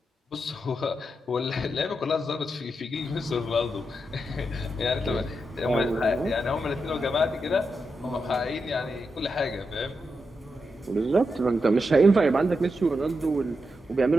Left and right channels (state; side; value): normal; both; correlation 0.86